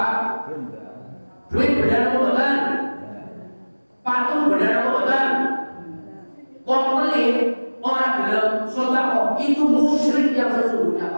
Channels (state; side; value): inverted; both; correlation -1.00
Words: Duit benda apa bukan? Patung benda apa bukan? Komplit orang dalam sodako itu musyrik yang sesungguhnya